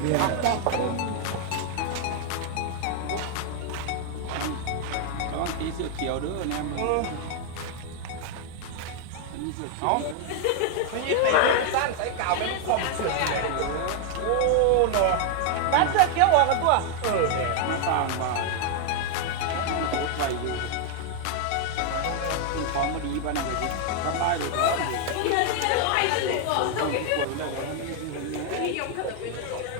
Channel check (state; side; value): different; both; correlation 0.00